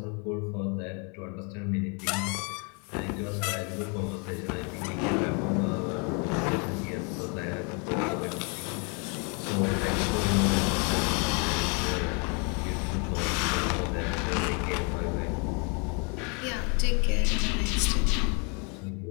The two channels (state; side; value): quieter; right; 35.2 dB